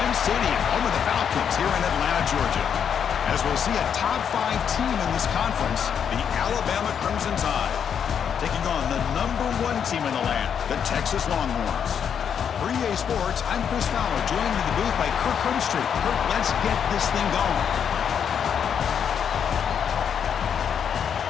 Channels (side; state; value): right; quieter; 7.8 dB